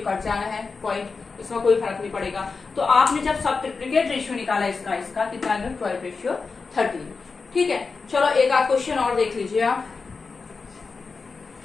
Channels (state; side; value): quieter; right; 4.5 dB